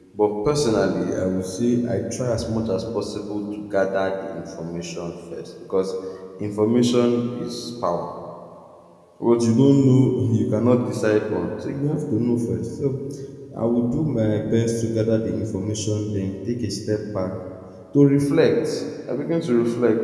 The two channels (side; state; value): both; identical; correlation 1.00